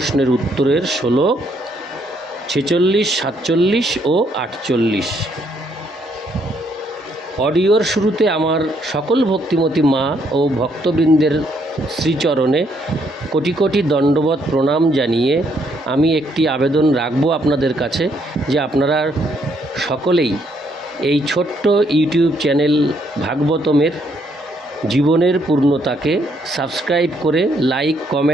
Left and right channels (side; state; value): both; normal; correlation 0.71